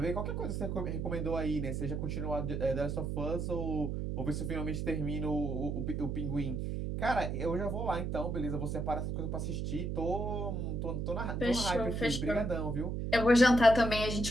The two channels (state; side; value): noise; right; hum, 2 dB below the sound